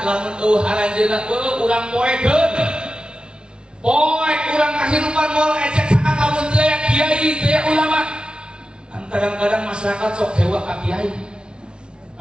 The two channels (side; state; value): left; late; 0.055 ms